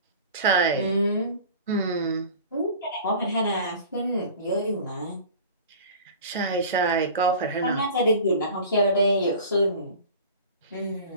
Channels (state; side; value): inverted; both; correlation -0.40